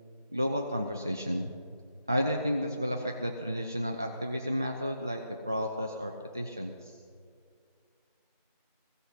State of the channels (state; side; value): inverted; both; correlation -0.82